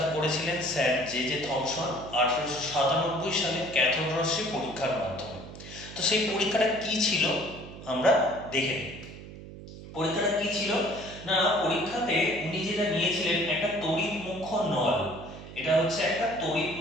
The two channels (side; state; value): right; noise; hum, 14 dB below the sound